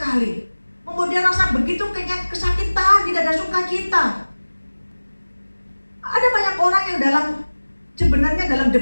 membuat dia rasa begitu kesakitan, tidak ada sukacita. Ada banyak orang yang sebenarnya dalam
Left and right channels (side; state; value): both; inverted; correlation -1.00